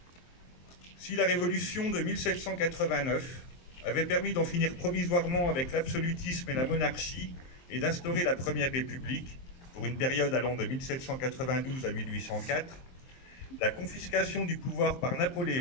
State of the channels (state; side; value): late; right; 23 ms